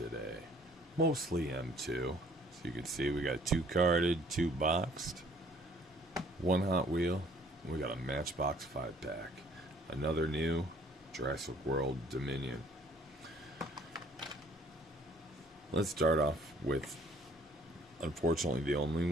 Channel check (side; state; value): both; normal; correlation 0.58